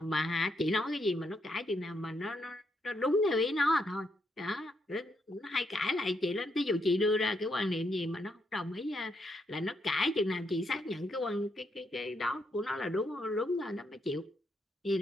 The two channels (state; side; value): normal; both; correlation 0.78